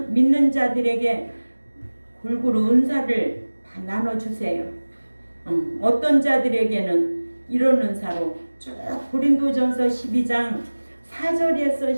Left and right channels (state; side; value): inverted; both; correlation -1.00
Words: 믿는 자들에게 골고루 은사를 다 나눠주세요. 어떤 자들에게는 이런 은사로 쭉 고린도전서 12장